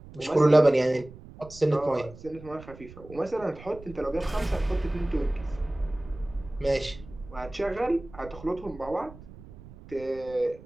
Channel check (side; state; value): right; noise; rumble, 18 dB below the sound